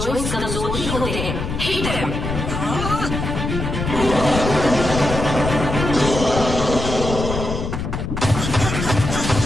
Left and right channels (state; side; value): noise; left; rumble, 4 dB below the sound